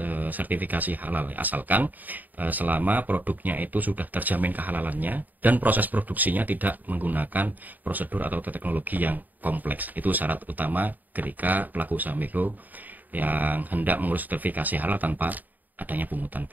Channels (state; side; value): late; left; 0.084 ms